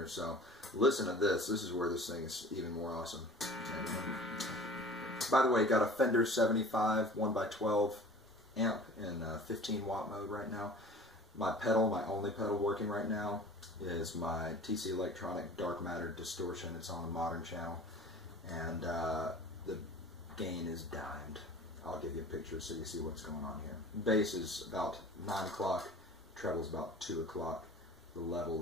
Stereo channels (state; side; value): normal; both; correlation 0.44